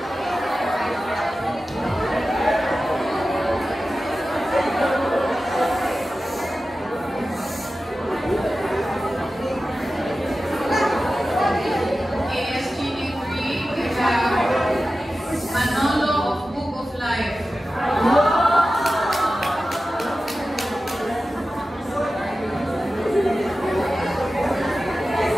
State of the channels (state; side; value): normal; both; correlation 0.94